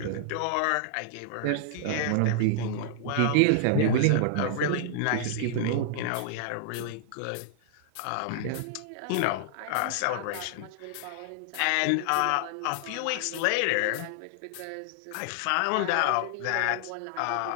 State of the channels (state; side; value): different; both; correlation -0.01